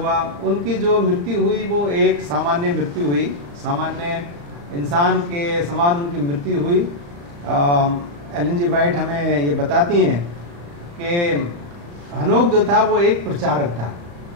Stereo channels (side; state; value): left; late; 35 ms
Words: उनकी जो मृत्यु हुई वो एक सामान्य मृत्यु हुई, सामान्य इंसान के समान उनकी मृत्यु हुई। एलन जी वाइट हमें ये बताती हैं कि हनोक जो था वो एक प्रचारक था,